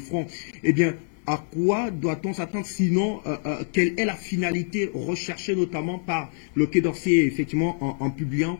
Eh bien, à quoi doit-on s'attendre sinon quelle est la finalité recherchée notamment par le Quai d'Orsay effectivement en publiant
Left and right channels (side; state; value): right; silent; 55 dB below the other